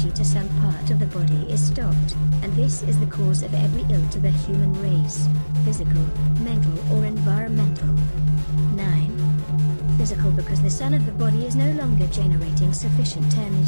to some part of the body is stopped, and this is the cause of every ill to the human race, physical, mental or environmental. 9. Physical, because the sun of the body is no longer generating sufficient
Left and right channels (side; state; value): both; inverted; correlation -1.00